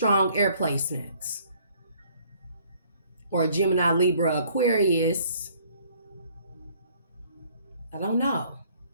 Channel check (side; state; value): both; inverted; correlation -0.59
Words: air placements. Or a Gemini, Libra, Aquarius. I don't know.